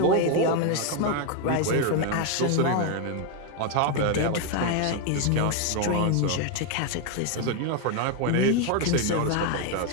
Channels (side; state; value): both; different; correlation 0.01